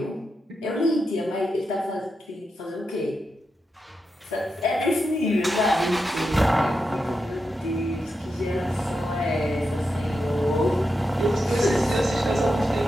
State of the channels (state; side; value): normal; both; correlation 0.87